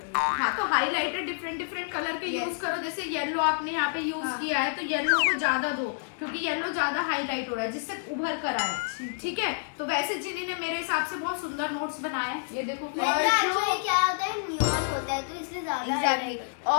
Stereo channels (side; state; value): right; silent; digital silence